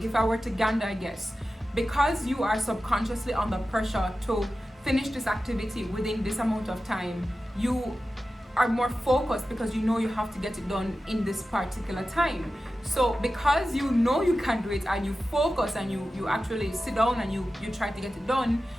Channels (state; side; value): normal; both; correlation 0.93